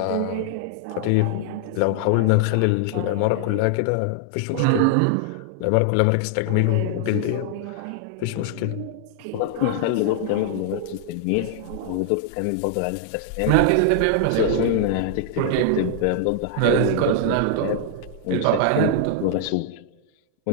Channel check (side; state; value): both; different; correlation -0.01